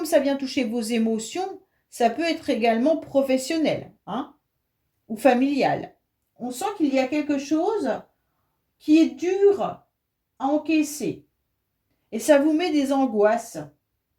ça vient toucher vos émotions, ça peut être également professionnel, hein, ou familial. On sent qu'il y a quelque chose qui est dur à encaisser et ça vous met des angoisses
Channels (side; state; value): both; identical; correlation 1.00